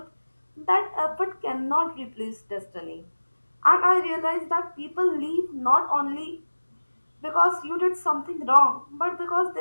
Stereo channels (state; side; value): inverted; both; correlation -1.00